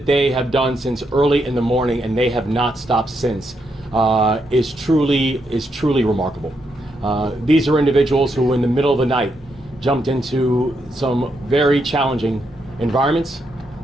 they have done since early in the morning, and they have not stopped since, is truly remarkable. These are individuals who in the middle of the night jumped into some very challenging environments,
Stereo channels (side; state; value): both; normal; correlation 0.80